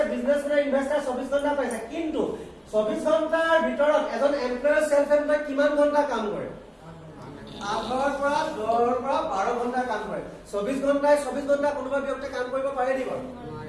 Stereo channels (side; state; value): both; identical; correlation 1.00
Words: বিজনেছমেন ইনভেস্টাৰ 24 ঘণ্টা পাইছে কিন্তু 24 ঘণ্টাৰ ভিতৰত এজন এমপ্লয়াৰ সেলফ এমপ্লয় কিমান ঘণ্টা কাম কৰে 8 পৰা 10 পৰা 12 ঘণ্টা কাম কৰে 24 ঘণ্টা কোনোবা ব্যক্তি কাম কৰিব পাৰে নি বাৰু